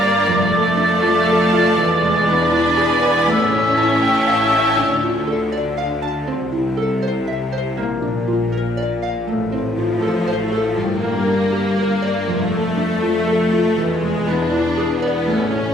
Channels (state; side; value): normal; both; correlation 0.70